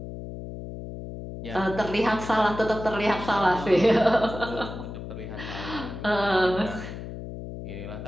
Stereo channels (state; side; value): noise; left; hum, 9 dB below the sound